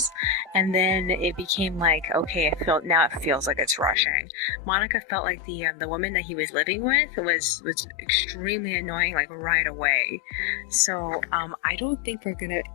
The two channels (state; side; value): drops out; right; at 4.0 s